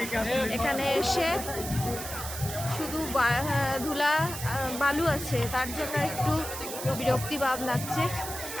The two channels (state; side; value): noise; right; hiss, 8 dB below the sound